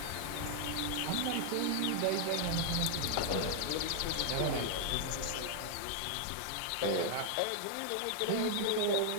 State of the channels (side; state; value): both; different; correlation 0.00